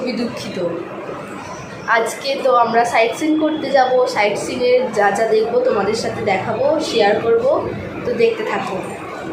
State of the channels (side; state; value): both; identical; correlation 1.00